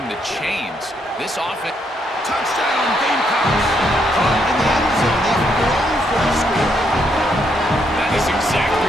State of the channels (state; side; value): normal; both; correlation 0.75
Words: the chains. This offense... Touchdown, Gamecocks! Caught in the end zone. They throw for a score. That is exactly